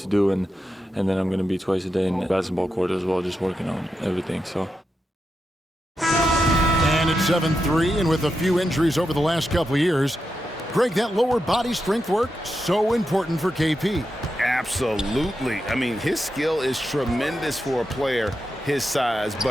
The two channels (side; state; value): both; normal; correlation 0.87